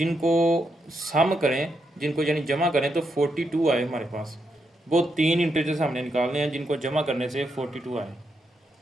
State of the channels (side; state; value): both; normal; correlation 0.81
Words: सम करें, जिनको यानी जमा करें तो 42 आए हमारे पास। वो तीन इंटीजर्स हमने निकालने हैं जिनको जमा करने से 42 आए।